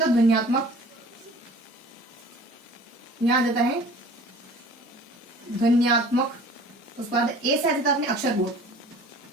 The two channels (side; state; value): both; normal; correlation 0.47